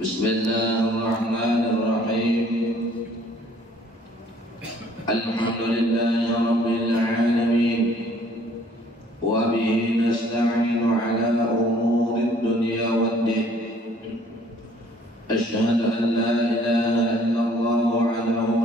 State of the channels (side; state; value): both; normal; correlation 0.58